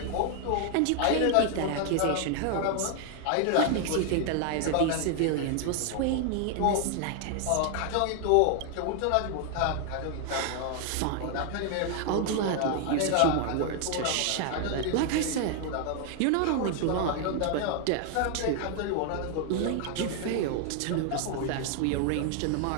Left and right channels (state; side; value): different; both; correlation 0.00